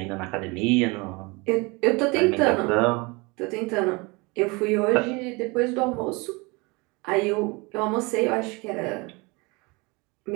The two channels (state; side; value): quieter; left; 26.8 dB